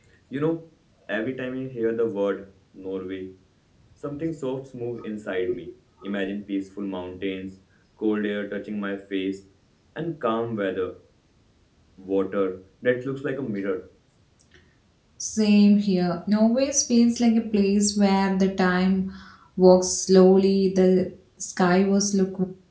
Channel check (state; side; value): identical; both; correlation 1.00